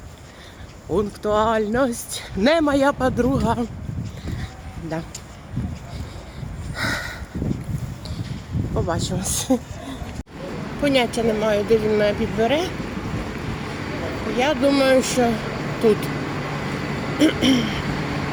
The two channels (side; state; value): both; identical; correlation 1.00